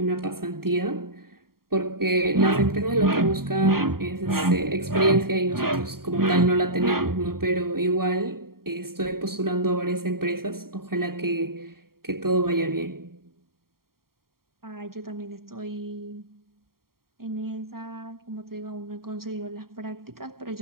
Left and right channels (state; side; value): late; left; 0.93 ms